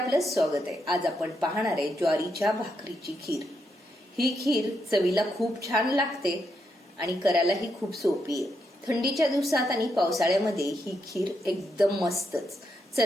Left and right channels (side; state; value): both; normal; correlation 0.81